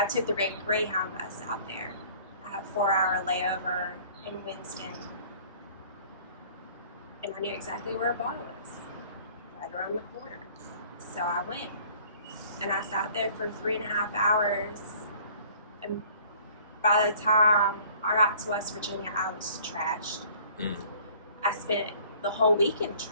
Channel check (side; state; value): both; inverted; correlation -0.52